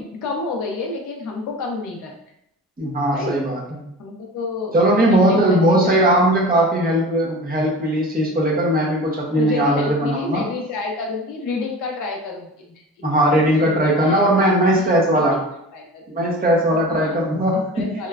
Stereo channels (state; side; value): normal; both; correlation 0.36